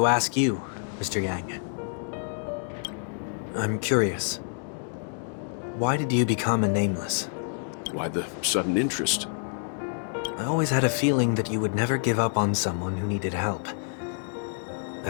ask you, Mr. Yang. I'm curious. Why did you become a Nameless? Why the sudden interest? I always had a feeling that you would never give up on someone who needed help.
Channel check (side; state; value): right; silent; digital silence